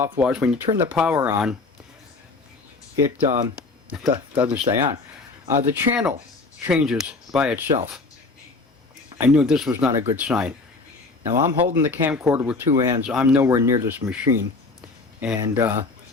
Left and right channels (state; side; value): quieter; right; 3.7 dB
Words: was when you turn the power on, it doesn't stay on. The channel changes by itself. I knew this was not a good sign. Now I'm holding the camcorder with two hands. I'm nowhere near this machine. And